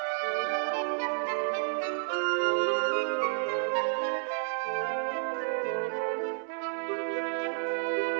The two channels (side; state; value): left; silent; 57 dB below the other